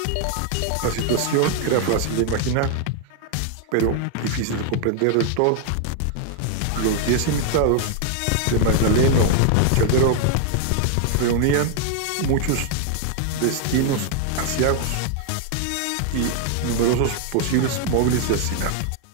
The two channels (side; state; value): both; different; correlation 0.00